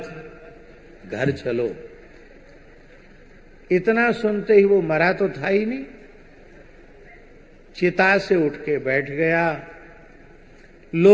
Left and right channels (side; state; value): both; identical; correlation 1.00